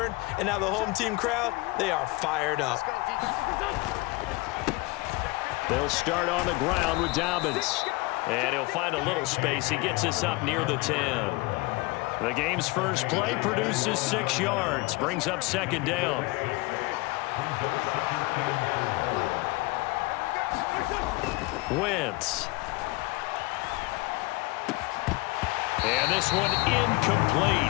and now the home team crowd, they are fired up. They'll start on the ground with Dobbins. And he'll find a little space. He gets us up near the 10. The game's first play produces 6 yards, brings up second down. Wentz. And this one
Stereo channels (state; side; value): quieter; right; 23.4 dB